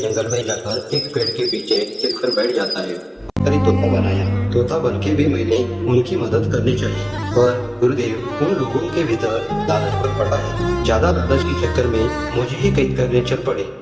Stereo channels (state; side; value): identical; both; correlation 1.00